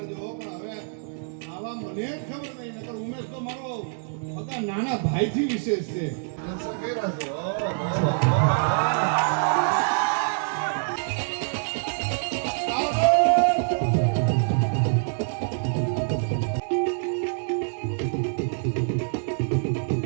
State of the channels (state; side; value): silent; left; 58 dB below the other